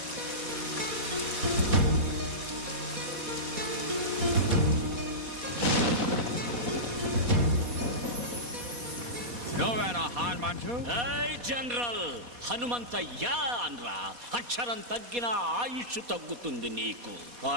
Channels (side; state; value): left; late; 4.2 ms